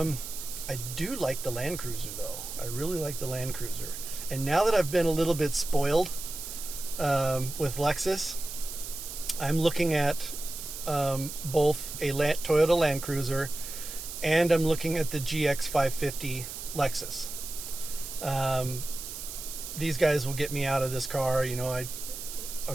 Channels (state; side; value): noise; right; hiss, 9 dB below the sound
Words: do like the Land Cruiser though. I really like the Land Cruiser. And now that I've been a little bit spoiled with Lexus, I'm looking at both a Toyota Land Cruiser, and I'm looking at the GX 550 Lexus. These guys will get me out of this car.